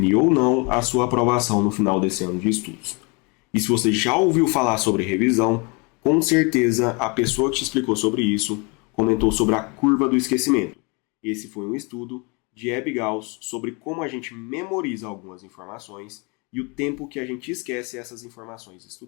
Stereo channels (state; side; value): quieter; right; 30.7 dB